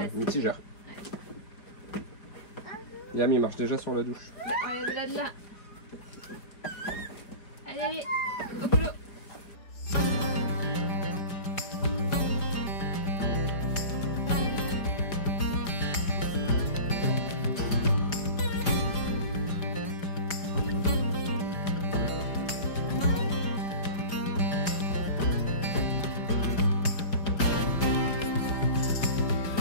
mitigeur. Yam, il marche déjà sur la douche. Bah, regarde là, de là. Allez, allez, au boulot.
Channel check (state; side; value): late; right; 5.0 ms